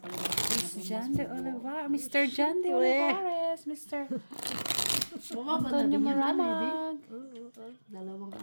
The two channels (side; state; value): both; inverted; correlation -1.00